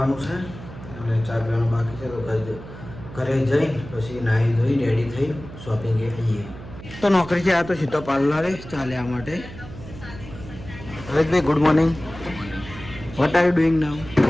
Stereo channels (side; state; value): right; noise; hum, 14 dB below the sound